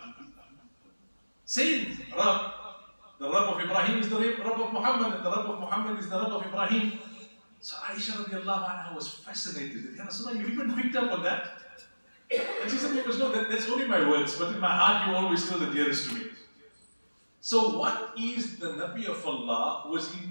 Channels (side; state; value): both; inverted; correlation -1.00